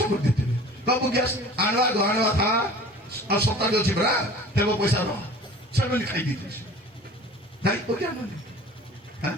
କରିଦେଇଥିବେ ବାବୁ ଗ୍ୟାସ୍ ଆଣିବା ଥା ଆଉ ସପ୍ତାହରେ ଅଛି ପରା ଦେବ ପଇସା ରହ ସେମାନେ ଖାଇ ଦେଇଥିବେ ଦାୟିତ୍ୱ ଜ୍ଞାନ ନେବେ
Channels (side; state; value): both; normal; correlation 0.43